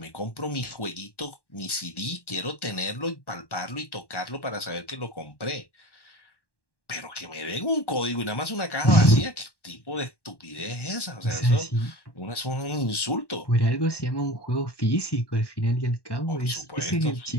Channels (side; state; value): right; late; 1.1 ms